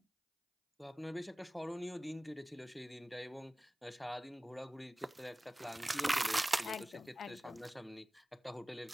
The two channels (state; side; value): normal; both; correlation 0.98